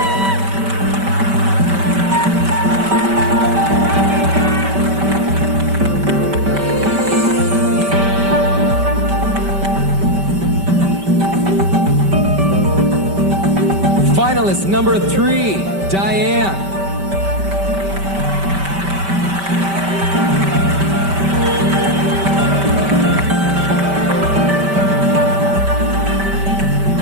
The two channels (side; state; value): left; late; 5.1 ms